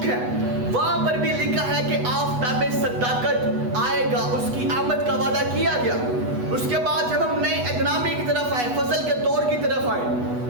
ہے، وہاں پر بھی لکھا ہے کہ آفتاب صداقت آئے گا، اس کی آمد کا وعدہ کیا گیا۔ اس کے بعد جب ہم نئے عہد نامے کی طرف آئے، فضل کے دور کی طرف آئے،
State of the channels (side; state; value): left; late; 8.2 ms